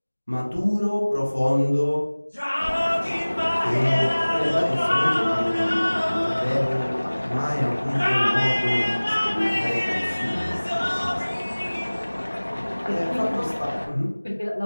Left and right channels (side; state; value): both; inverted; correlation -1.00